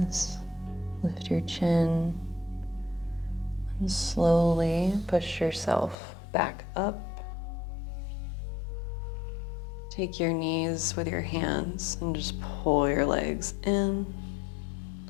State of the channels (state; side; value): drops out; right; at 6.0 s